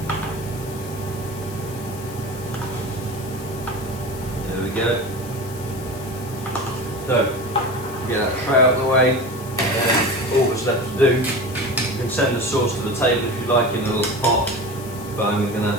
There we go. So, get that tray out of the way, and all that's left to do, you can send the sauce to the table if you like in a little pot, but I'm going to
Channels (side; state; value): left; noise; hiss, 16 dB below the sound